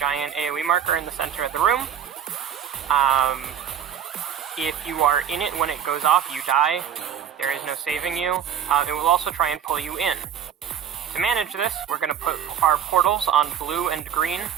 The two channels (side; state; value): left; quieter; 9.0 dB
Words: AoE marker in the center of the room. If you are in it when it goes off, you die. There is no saving you. It will also try and pull you in. To manage this, we're going to put our portals on blue and green,